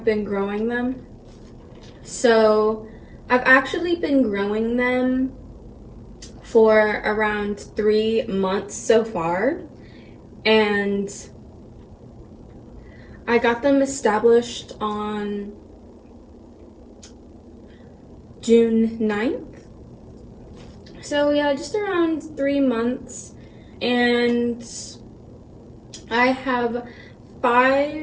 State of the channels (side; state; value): both; identical; correlation 1.00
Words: been growing them. So I've actually been growing them for around 3 months so far, and I got them established on June 9th. So yeah, just around 3 months. And I have 5